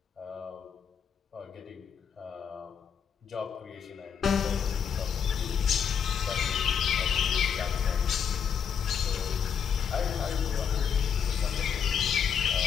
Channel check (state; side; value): quieter; right; 7.3 dB